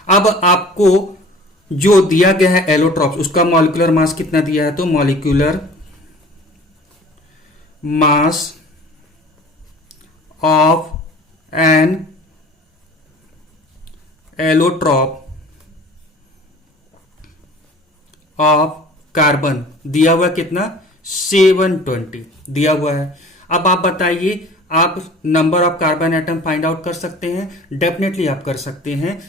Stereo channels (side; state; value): both; normal; correlation 0.45